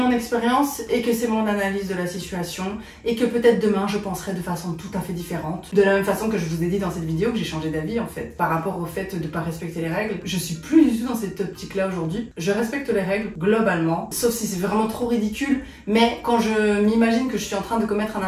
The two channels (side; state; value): both; identical; correlation 1.00